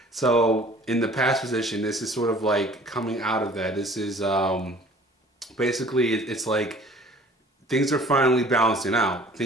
so in the past position, this is sort of like coming out of that. This is basically it's like things are finally balancing out.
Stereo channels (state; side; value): normal; both; correlation 0.50